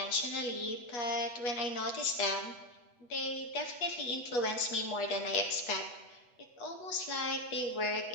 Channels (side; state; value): right; late; 8.2 ms